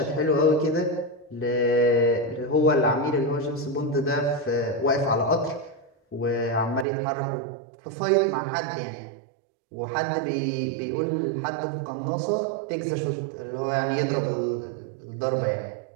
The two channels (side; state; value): left; drops out; at 6.9 s